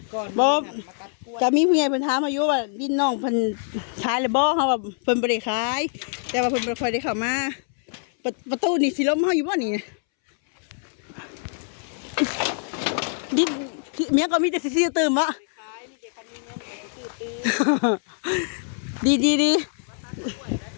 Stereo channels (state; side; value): silent; right; 62 dB below the other